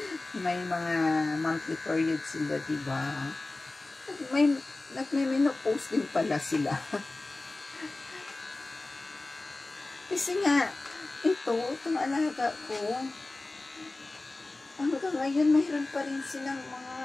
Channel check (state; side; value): quieter; right; 3.1 dB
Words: may mga monthly period sila, diba? Nagme-menopause din pala sila. Kasi nga, itong alaga ko, hanggang ngayon, mayroon pa rin silang mga